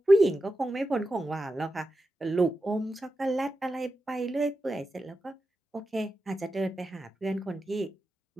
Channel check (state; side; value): normal; both; correlation 0.90